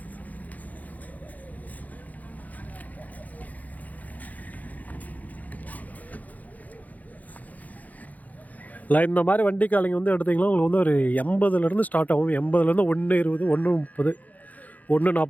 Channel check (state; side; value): late; right; 0.078 ms